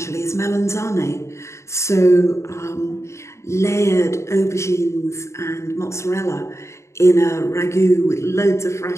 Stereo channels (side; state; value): right; late; 0.14 ms